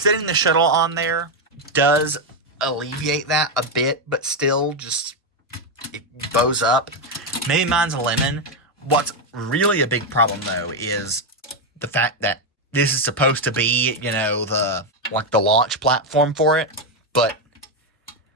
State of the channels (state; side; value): normal; both; correlation 0.05